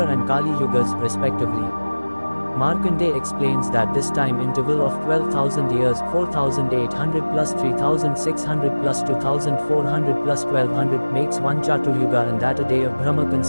and Kali yugas respectively. Markandeya explains that this time interval of 12,000 years, 4,800 plus 3,600 plus 2,400 plus 1,200 makes one Chaturyuga and that a day of Brahma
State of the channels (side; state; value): both; inverted; correlation -1.00